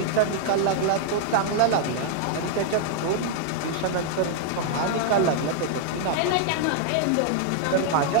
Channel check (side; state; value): both; different; correlation -0.01